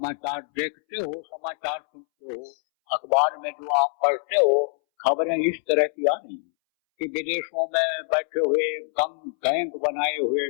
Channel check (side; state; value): right; silent; 62 dB below the other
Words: देखते हो, समाचार सुनते हो, अखबार में जो आप पढ़ते हो, खबरें इस तरह की आ रही हैं कि विदेशों में बैठे हुए गैंग बनाए हुए